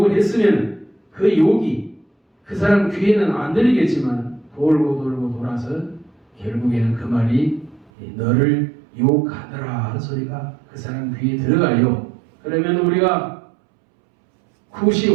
했으면 그 욕이 그 사람 귀에는 안 들리겠지만 돌고 돌고 돌아서 결국에는 그 말이 너를 욕하더라 하는 소리가 그 사람 귀에 들어가요. 그러면 우리가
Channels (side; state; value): left; drops out; at 7.9 s